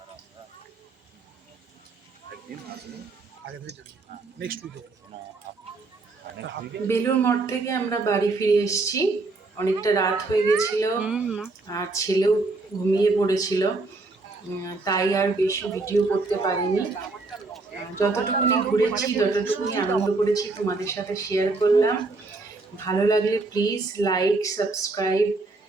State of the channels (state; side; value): quieter; left; 3.5 dB